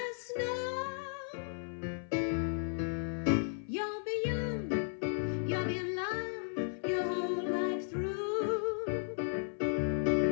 snow. You'll be young, you'll be in love your whole life through.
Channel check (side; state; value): right; silent; 54 dB below the other